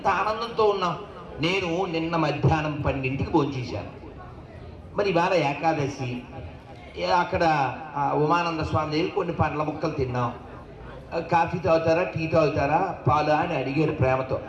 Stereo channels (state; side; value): identical; both; correlation 1.00